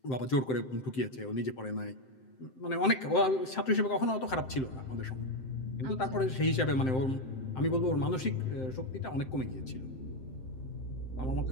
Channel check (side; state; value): right; late; 7.7 ms